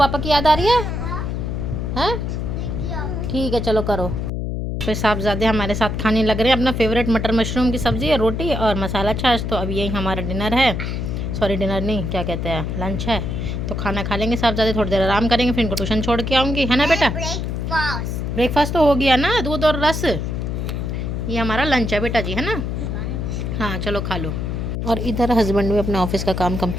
की याद आ रही है? ठीक है, चलो करो। फिर साहबजादे हमारे साथ खाने लग रहे हैं अपना फेवरेट मटर मशरूम की सब्ज़ी है, रोटी और मसाला छाछ। तो अब यही हमारा डिनर है, सॉरी डिनर नहीं, क्या कहते हैं, लंच है। तो खाना खा लेंगे साहबजादे, थोड़ी देर आराम करेंगे, फिर इनको ट्यूशन छोड़ के आऊँगी, है ना बेटा? ब्रेकफास्ट तो हो गया ना, दूध और रस। ये हमारा लंच है बेटा जी, है ना? हाँ चलो खा लो। और इधर हस्बैंड भी अपने ऑफिस का काम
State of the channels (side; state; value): left; noise; hum, 2 dB below the sound